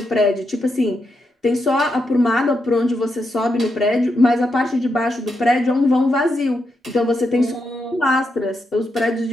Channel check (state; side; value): normal; both; correlation 0.83